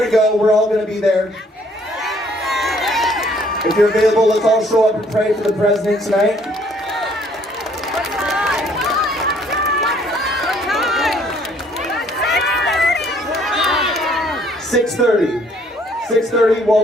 go. We're all gonna be there. If you're available, let's all show up and pray for the president tonight. (6:30), 6:30,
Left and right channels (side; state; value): both; normal; correlation 0.62